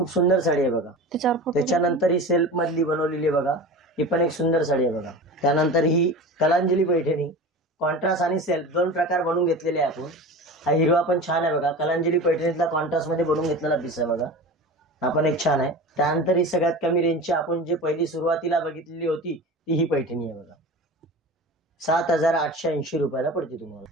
सुंदर साडी आहे बघा। त्याच्यानंतर ही सेल्फ मधली बनवलेली आहे बघा, ही पण एक सुंदर साडी आहे बघा। त्यानंतर ही कलांजली पैठणी, कॉन्ट्रास्ट आणि सेल्फ दोन प्रकार बनवून घेतलेले आहे आपण। हा हिरवा पण छान आहे बघा, कलांजली पैठणीतला कॉन्ट्रास्ट मध्ये बनवून घेतलेला पीस आहे बघा, हा पण एक छान आहे। त्यानंतर ही सगळ्यात कमी रेंजची आपण जे पहिली सुरुवातीला बघितलेली होती ती ही पैठणी आहे बघा, 7,880 रुपयाला पडते तुम्हाला।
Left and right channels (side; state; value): both; normal; correlation 0.33